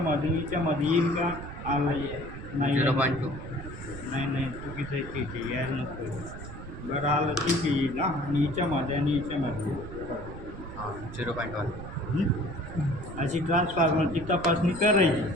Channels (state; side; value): noise; right; rumble, 12 dB below the sound